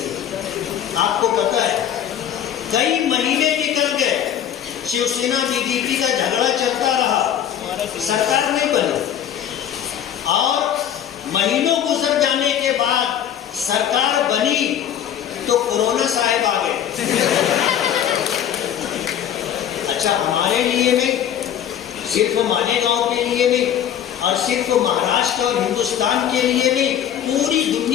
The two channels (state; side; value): quieter; right; 10.0 dB